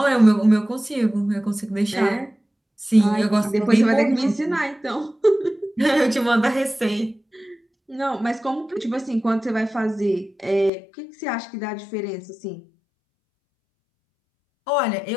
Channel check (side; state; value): right; drops out; at 10.7 s